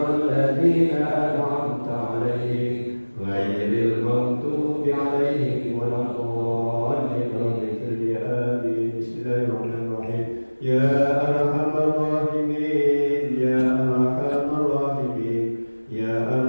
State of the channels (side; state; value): both; inverted; correlation -1.00